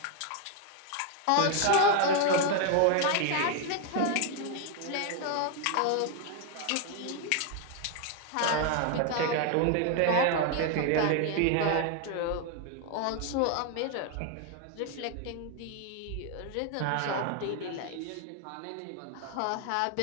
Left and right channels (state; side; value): different; both; correlation 0.01